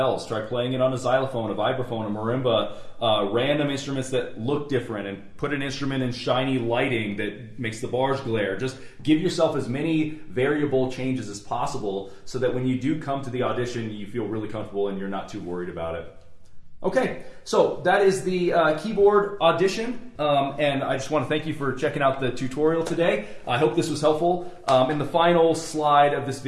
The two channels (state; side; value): identical; both; correlation 1.00